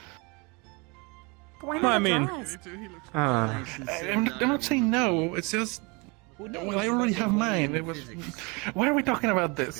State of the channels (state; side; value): quieter; left; 29.0 dB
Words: Why Well, I not mean- dress? I'm not saying no. It's just. Well, I already have mine. It was. Why are we talking about